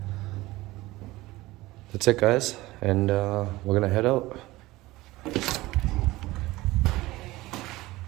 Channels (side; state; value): left; quieter; 19.1 dB